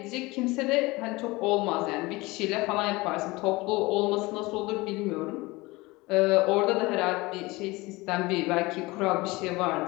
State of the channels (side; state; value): right; quieter; 22.2 dB